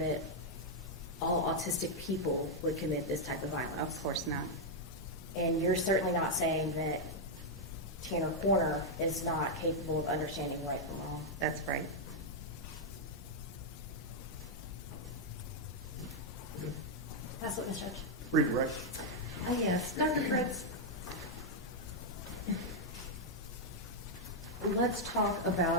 all autistic people would commit this type of violence. Of course not. And you're certainly not saying that Tanner Corner is not capable of understanding right from wrong. That's right. That's what, Ms. Judge. Redirect. Yes, Dr. Fritz. Let's talk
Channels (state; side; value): noise; right; rumble, 20 dB below the sound